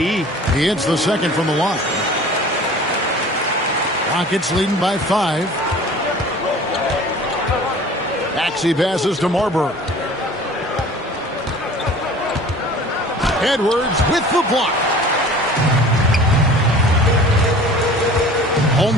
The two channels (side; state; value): both; normal; correlation 0.45